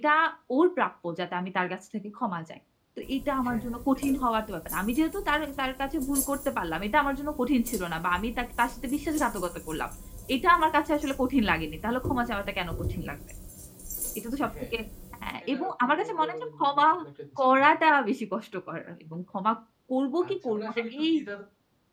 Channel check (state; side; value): identical; both; correlation 1.00